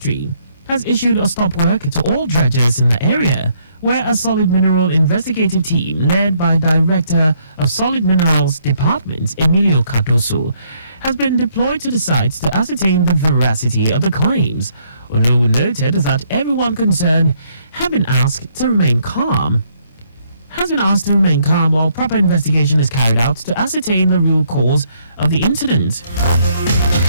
has issued a stop work to all dredgers in the area, where a solid mineral investigative team led by Director of Solid Minerals Department, Emilio Cardoso, has been deployed to the site to ascertain the veracity of the claims. Olowu noted that everyone concerned has been asked to remain calm while proper investigation is carried out to ascertain the real cause of the incident.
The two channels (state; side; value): inverted; both; correlation -0.69